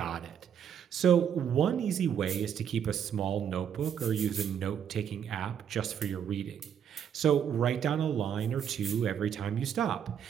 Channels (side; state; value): left; quieter; 8.5 dB